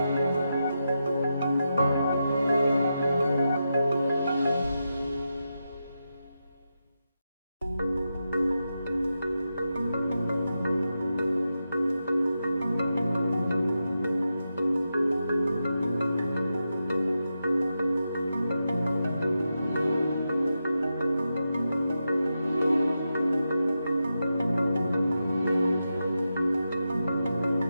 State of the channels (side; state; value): both; inverted; correlation -0.88